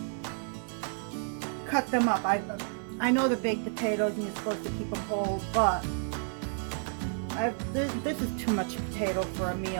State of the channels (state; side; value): silent; left; 57 dB below the other